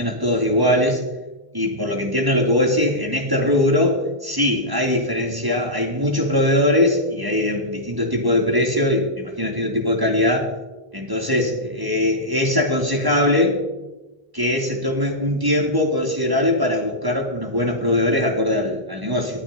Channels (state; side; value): late; left; 1.0 ms